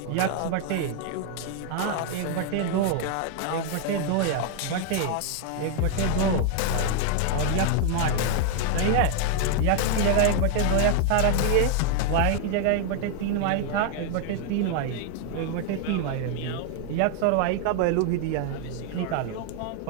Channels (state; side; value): different; both; correlation 0.00